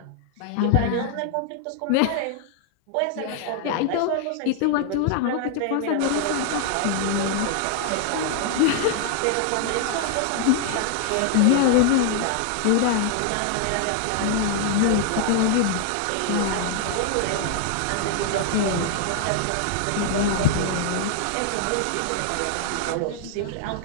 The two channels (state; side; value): different; both; correlation 0.00